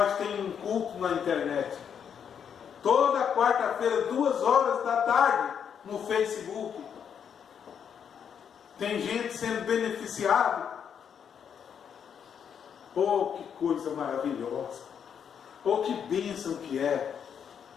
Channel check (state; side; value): quieter; right; 7.8 dB